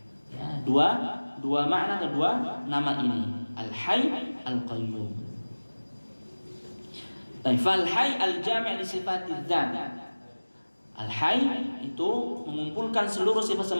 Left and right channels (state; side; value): inverted; both; correlation -1.00